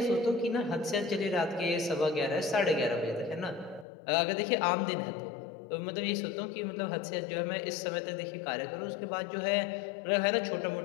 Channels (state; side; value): drops out; right; at 3.9 s